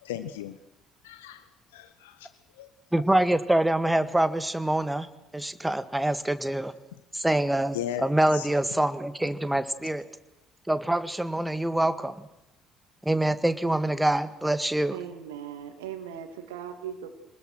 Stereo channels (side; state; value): both; normal; correlation 0.94